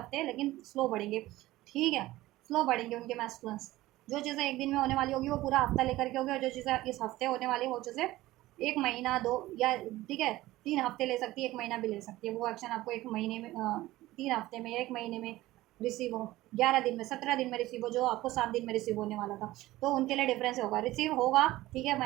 लेकिन स्लो बढ़ेंगे, ठीक है, स्लो बढ़ेंगे उनके मैस्कुलेंस। जो चीज़ें एक दिन में होने वाली होगी वो पूरा हफ्ता लेकर के होगी, और जो चीज़ें इस हफ्ते होने वाली वो चीज़ें एक महीना दो या ठीक है 3 हफ्ते ले सकती है, एक महीना भी ले सकती है, वो एक्शन आपको एक महीने में 3 हफ्ते में या एक महीने में रिसीव हो, 11 दिन में, 17 दिन में रिसीव हो, जो आपको 7 दिन में रिसीव होने वाला था, तो उनके लिए डिफरेंस होगा, रिसीव होगा, ठीक है,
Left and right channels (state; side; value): quieter; left; 17.0 dB